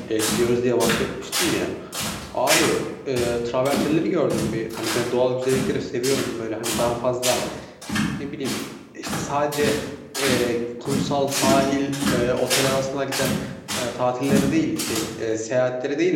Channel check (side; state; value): both; identical; correlation 1.00